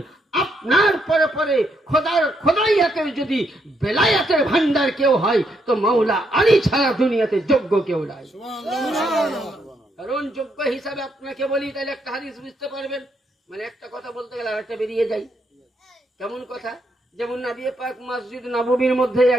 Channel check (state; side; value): normal; both; correlation 0.76